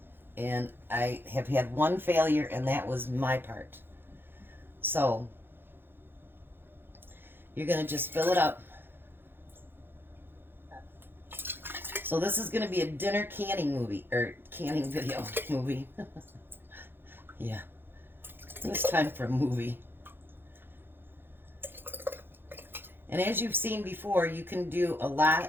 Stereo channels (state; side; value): late; left; 0.10 ms